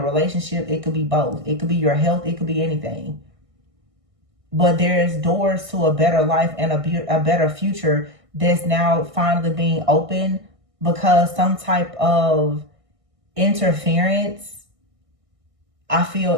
relationship, it could be both, it could be your health, it could be anything. But there's doors to a better life and a better future that's now finally being opened, because some type of interference, I feel,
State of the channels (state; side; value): late; left; 1.6 ms